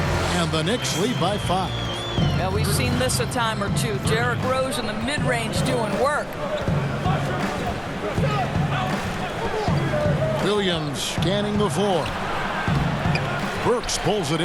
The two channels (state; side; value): identical; both; correlation 1.00